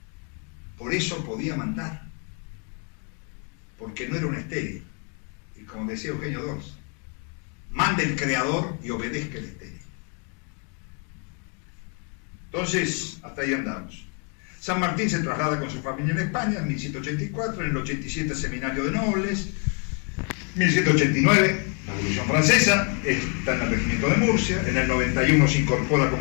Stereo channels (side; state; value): right; quieter; 38.0 dB